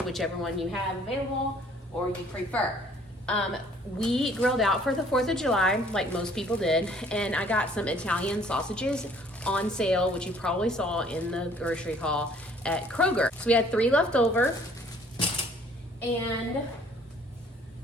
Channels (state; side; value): normal; both; correlation 0.58